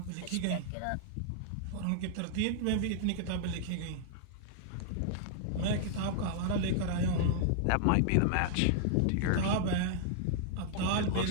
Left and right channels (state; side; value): different; both; correlation -0.01